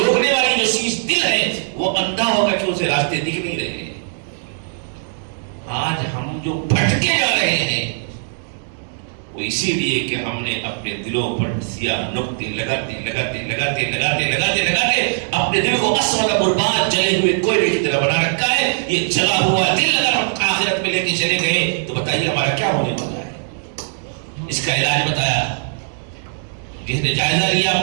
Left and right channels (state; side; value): silent; left; digital silence